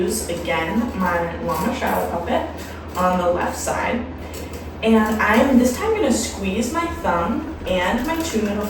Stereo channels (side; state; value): both; identical; correlation 1.00